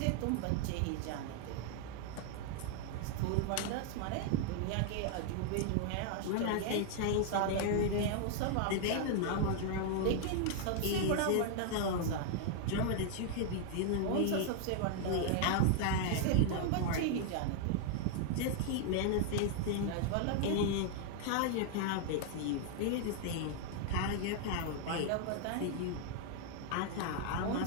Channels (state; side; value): different; both; correlation 0.00